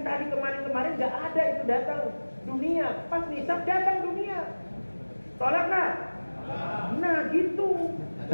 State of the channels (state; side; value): inverted; both; correlation -1.00